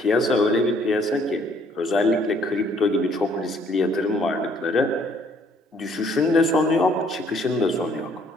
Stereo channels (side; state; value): both; normal; correlation 0.63